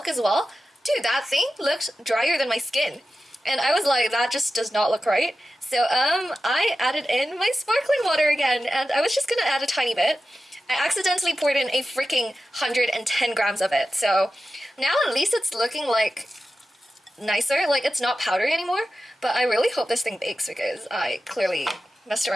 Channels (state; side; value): normal; both; correlation 0.93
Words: as well. Dude, that thing looked drier than my skin. And I was like, that just does not look right. So I added in my sparkling water again, and I was just gonna add a tiny bit. I accidentally poured in a freaking 110 grams of it. So now at least it's looking like nicer. Like it's not powdery anymore. But I really hope this thing bakes because I clearly messed